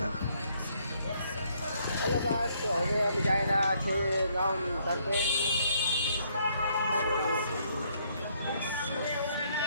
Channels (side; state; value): both; inverted; correlation -0.69